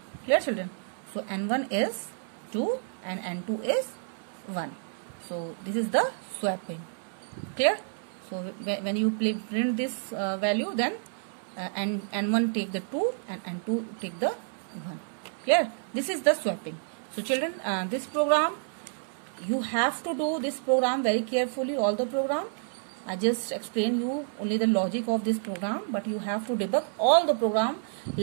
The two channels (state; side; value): silent; left; 58 dB below the other